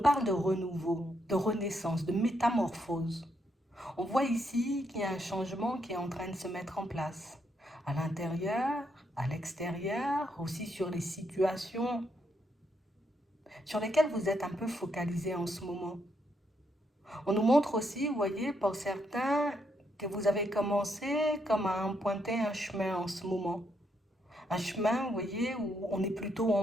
de renouveau, de renaissance, de métamorphose. On voit ici qu'il y a un changement qui est en train de se mettre en place. À l'intérieur, à l'extérieur, aussi sur les situations sur lesquelles vous êtes un peu focalisé en ce moment. On nous montre aussi, vous voyez, pour certains, que vous avez commencé comme à emprunter un chemin en ce moment. Un chemin, vous voyez, où on est plutôt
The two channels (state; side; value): normal; both; correlation 0.77